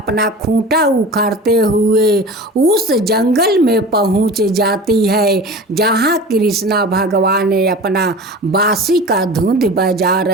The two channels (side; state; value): both; normal; correlation 0.35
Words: खूंटा उखाड़ते हुए उस जंगल में पहुंच जाती है जहां कृष्णा भगवान अपना बांसी का धुंध बजा